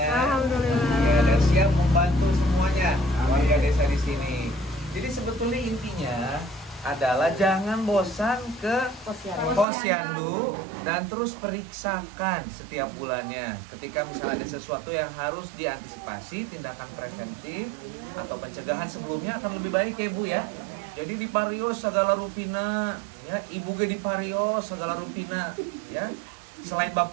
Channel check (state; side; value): drops out; left; at 9.7 s